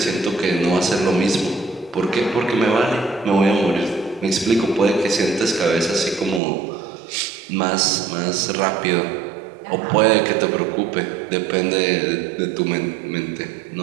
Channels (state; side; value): drops out; left; at 6.4 s